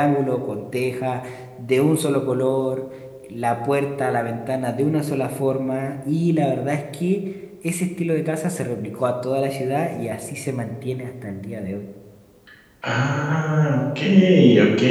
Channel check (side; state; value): both; identical; correlation 1.00